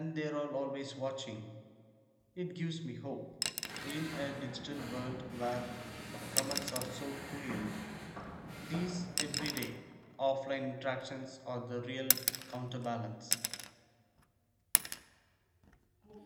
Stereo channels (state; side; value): identical; both; correlation 1.00